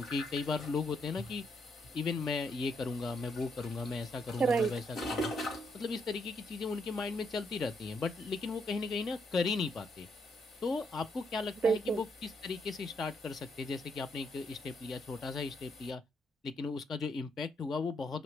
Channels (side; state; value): both; normal; correlation 0.76